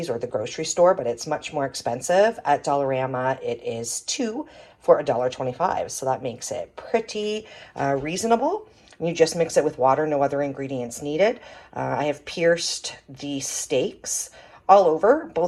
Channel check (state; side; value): identical; both; correlation 1.00